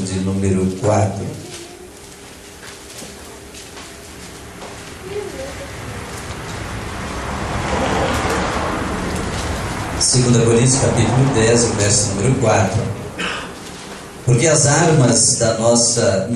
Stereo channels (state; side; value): identical; both; correlation 1.00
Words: número 4. Segunda Coríntios, capítulo 10, verso número 4. Porque as armas da nossa